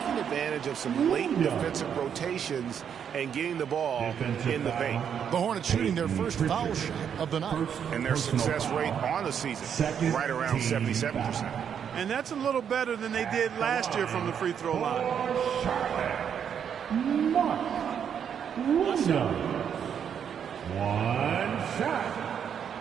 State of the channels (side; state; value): left; quieter; 8.1 dB